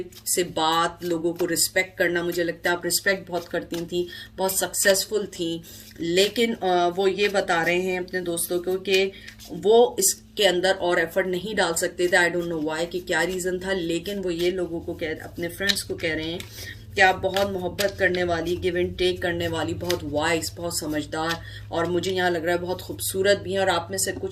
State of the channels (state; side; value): identical; both; correlation 1.00